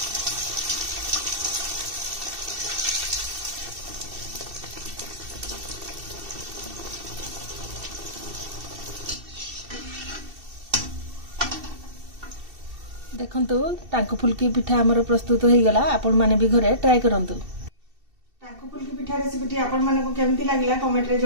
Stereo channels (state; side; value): late; left; 2.7 ms